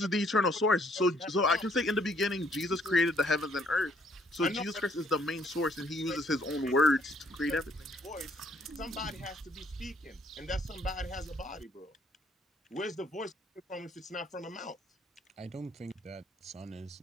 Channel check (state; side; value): normal; both; correlation 0.66